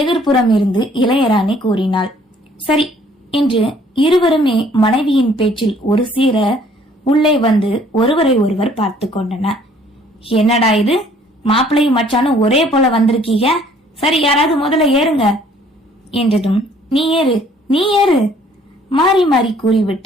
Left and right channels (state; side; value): normal; both; correlation 0.59